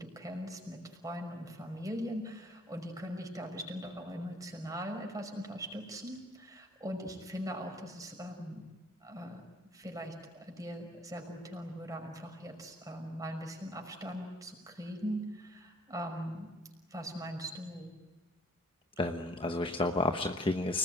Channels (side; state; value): both; normal; correlation 0.57